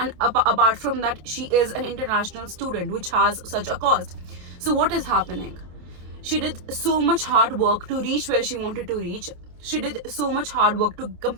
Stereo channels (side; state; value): left; late; 27 ms